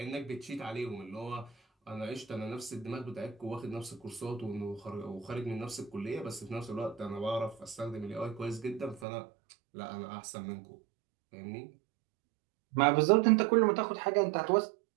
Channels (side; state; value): left; drops out; at 9.1 s